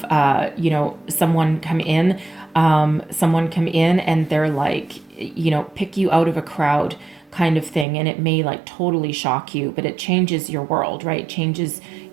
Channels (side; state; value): left; drops out; at 7.9 s